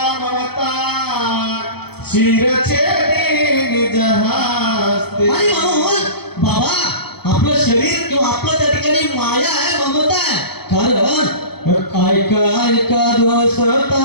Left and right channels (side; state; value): right; late; 0.97 ms